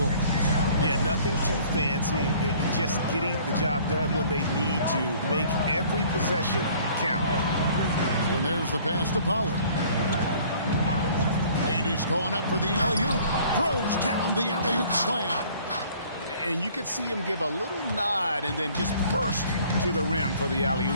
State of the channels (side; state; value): both; inverted; correlation -0.54